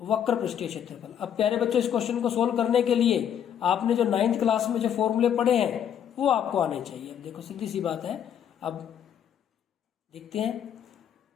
वक्र पृष्ठीय क्षेत्रफल। अब प्यारे बच्चों इस क्वेश्चन को सोल्व करने के लिए आपने जो 9th क्लास में जो फॉर्मूले पढ़े हैं वो आपको आने चाहिए। अब देखो सीधी सी बात है, अब देखते हैं।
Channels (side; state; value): right; quieter; 9.2 dB